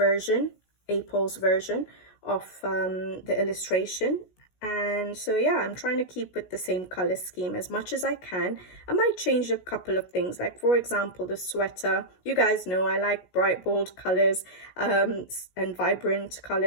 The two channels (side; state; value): right; late; 16 ms